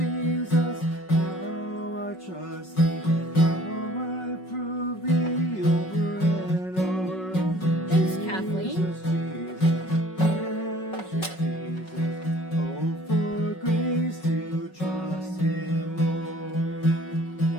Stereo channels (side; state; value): right; late; 5.4 ms